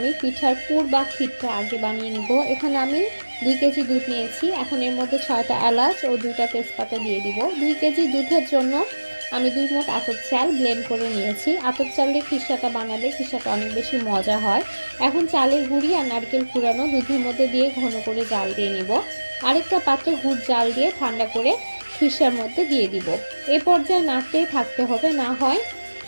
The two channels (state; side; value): inverted; both; correlation -1.00